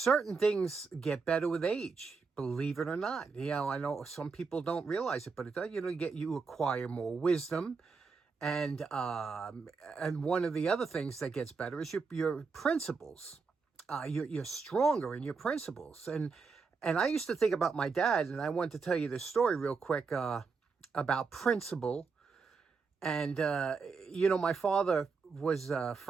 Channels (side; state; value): left; quieter; 4.9 dB